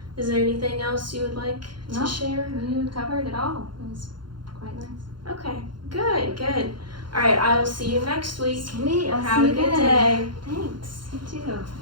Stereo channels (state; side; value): late; left; 0.72 ms